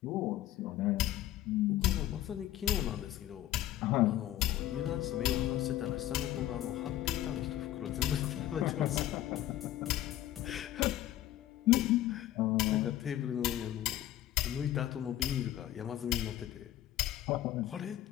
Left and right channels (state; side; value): quieter; right; 13.6 dB